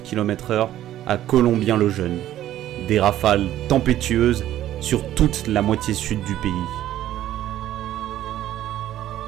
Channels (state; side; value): quieter; left; 12.8 dB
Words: km/h à Colombien-le-Jeune. Des rafales tempétueuses sur toute la moitié sud du pays.